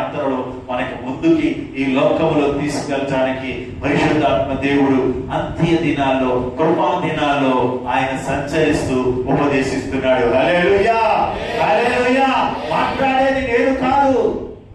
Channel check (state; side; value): identical; both; correlation 1.00